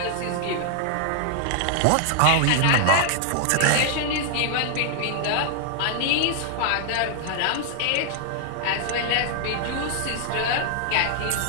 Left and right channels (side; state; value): both; different; correlation -0.01